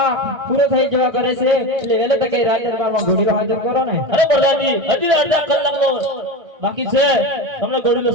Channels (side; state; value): left; late; 1.6 ms